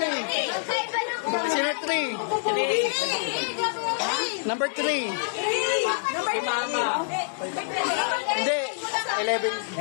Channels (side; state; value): right; silent; digital silence